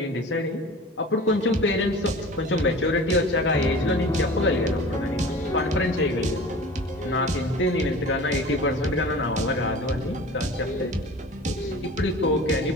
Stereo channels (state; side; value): normal; both; correlation 0.39